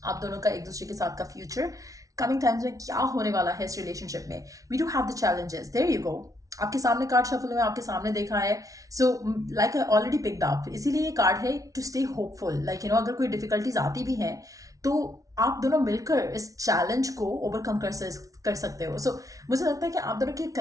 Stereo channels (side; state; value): left; late; 0.17 ms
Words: आप दोनों का एक दूसरे के साथ का फ्यूचर, कमिंग टाइम्स में क्या होने वाला है इस रिलेशनशिप में। We do have the challenges, there you go. आपके सामने कार्ड शफल में आपके सामने देखा है। Like I already picked up, इसीलिए ये कार्ड है टू स्टे होपफुल। लाइक अगर कोई डिफिकल्टीज आती भी हैं तो आप दोनों मिलकर इस चैलेंज को ओवरकम कर सकते हो। मुझे लगता है कि आप दोनों के